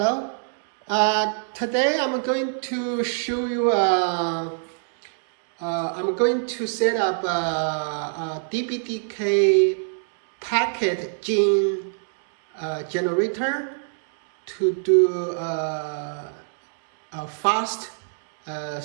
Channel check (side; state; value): left; silent; digital silence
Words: Today I'm going to show you. I'm going to set up a DPDK Pktgen generator to do a fast